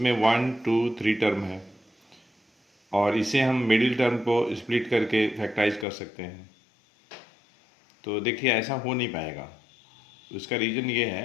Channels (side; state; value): right; drops out; at 5.9 s